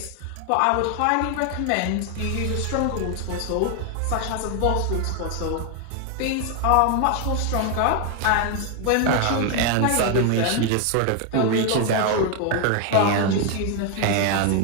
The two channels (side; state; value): both; different; correlation 0.01